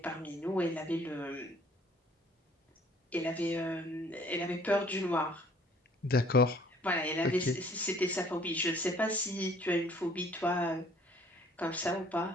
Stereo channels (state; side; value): normal; both; correlation 0.57